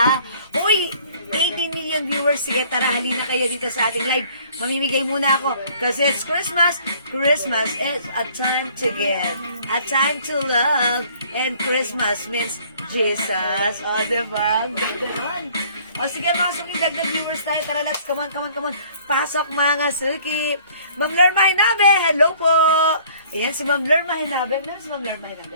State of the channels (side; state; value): both; inverted; correlation -0.56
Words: Uy, 18 million viewers. Sige, tara, halina kayo dito sa ating live. Mamimigay muna ako. Kasi it's Christmas. Christmas is a time to give. A time to love. And Christmas means Jesus. O, diba? Ang ganda nun. O, sige, mga suki, dagdag viewers tayo. Tara, let's, come on. Pasok, mga suki. Ma'am Lerma Hinabe, hello po. Ayan, si Ma'am Lerma Hinabe. Meron si Ma'am Lerma Hinabe?